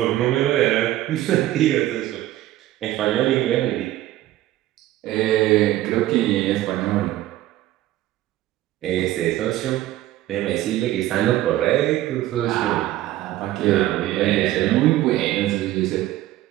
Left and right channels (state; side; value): quieter; left; 14.8 dB